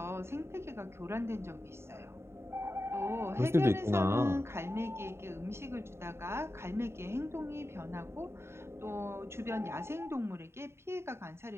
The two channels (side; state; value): left; late; 0.12 ms